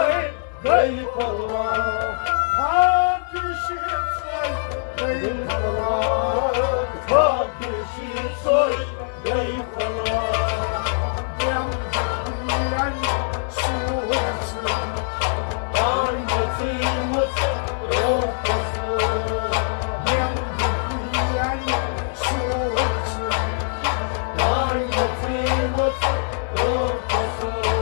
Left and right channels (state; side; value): silent; right; 64 dB below the other